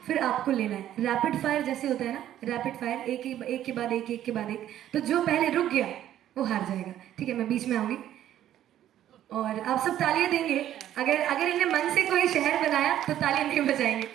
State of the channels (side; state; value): left; quieter; 11.8 dB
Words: फिर आपको लेना है। रैपिड फायर जैसे होता है ना, रैपिड फायर, एक के बाद एक के बाद एक। तो जो पहले रुक गया वो हार जाएगा, ठीक है। मैं बीच में आऊँगी और आप सब तालियां देंगे। अगर इन्हें मन से कोई शहर बनाया तो तालियां नहीं बजाएंगे,